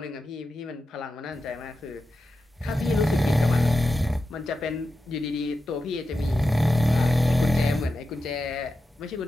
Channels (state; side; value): normal; both; correlation 0.90